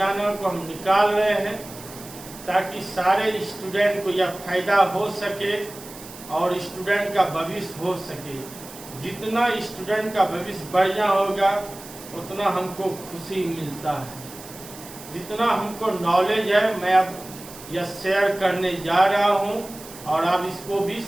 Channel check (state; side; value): noise; right; hiss, 16 dB below the sound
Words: को हम निकाल रहे हैं ताकि सारे स्टूडेंट को यह फायदा हो सके और स्टूडेंट का भविष्य हो सके। जितना स्टूडेंट का भविष्य बढ़िया होगा उतना हमको खुशी मिलता है। जितना हमको नॉलेज है मैं अब यह शेयर करने जा रहा हूं और आप इसको भी